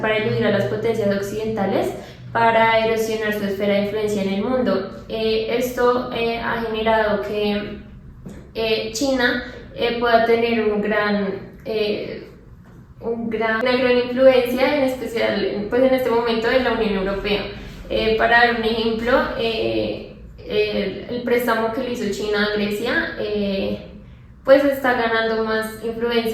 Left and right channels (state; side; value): identical; both; correlation 1.00